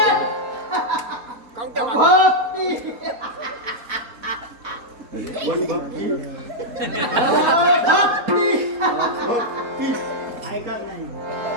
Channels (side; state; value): left; late; 4.1 ms